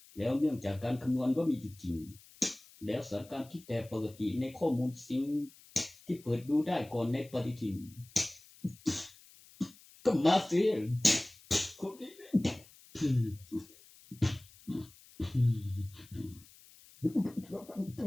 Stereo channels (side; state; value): left; noise; hiss, 24 dB below the sound